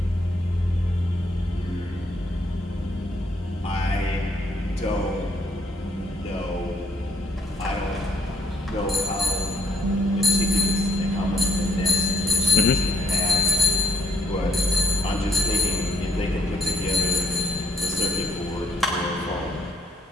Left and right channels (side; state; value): both; normal; correlation 0.70